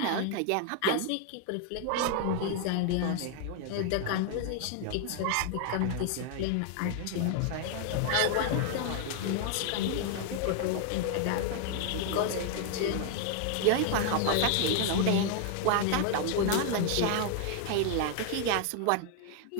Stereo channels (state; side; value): different; both; correlation 0.00